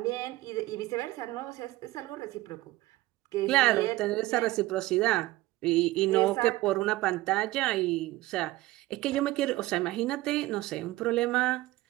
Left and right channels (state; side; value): quieter; left; 18.1 dB